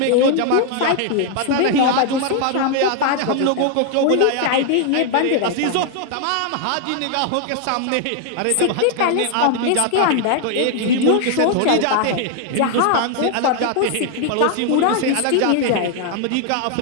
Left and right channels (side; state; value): both; different; correlation 0.00